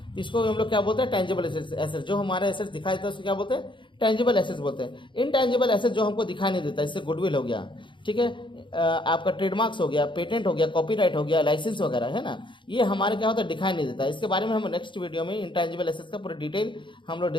तो इसको हम लोग क्या बोलते हैं, टेंजिबल एसेट्स। जो हमारे एसेट्स दिखाई देता है उसको क्या बोलते हैं, टेंजिबल एसेट्स बोलते हैं। इनटेंजिबल एसेट्स जो हमको दिखाई नहीं देता, इससे गुडविल हो गया, ठीक है, आपका ट्रेडमार्क्स हो गया, पेटेंट हो गया, कॉपीराइट हो गया, लाइसेंस वगैरह है ना, ये हमारे क्या होता है, दिखाई नहीं देता। इसके बारे में हम नेक्स्ट वीडियो में इनटेंजिबल एसेट्स का पूरा डिटेल हम लोग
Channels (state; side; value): late; right; 0.23 ms